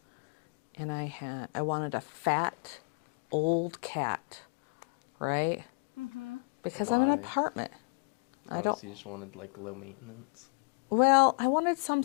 and I wanted a fat, old cat, right? Because I'm in an Why? apartment. I Oh, don't. so you just wanted like low maintenance. Well, I wanted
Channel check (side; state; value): right; quieter; 35.4 dB